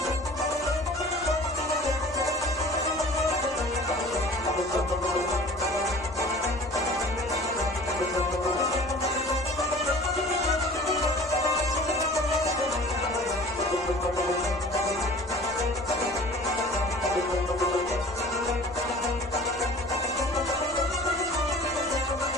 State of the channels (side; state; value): left; noise; rumble, 22 dB below the sound